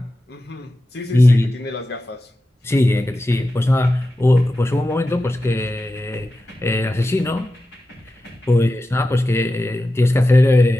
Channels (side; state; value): both; normal; correlation 0.93